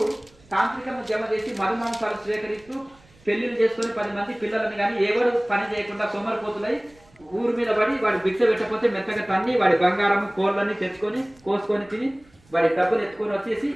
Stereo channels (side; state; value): right; noise; rumble, 29 dB below the sound